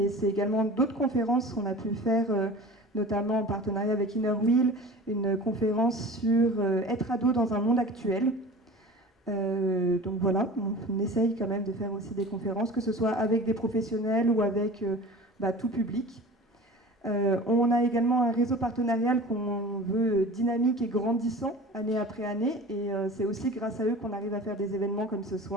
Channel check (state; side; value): normal; both; correlation 0.38